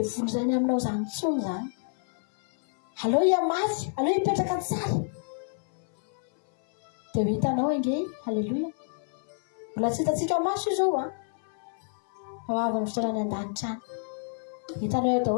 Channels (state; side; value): silent; right; 59 dB below the other